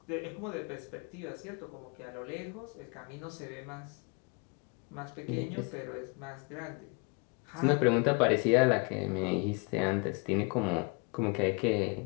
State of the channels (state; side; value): quieter; right; 31.6 dB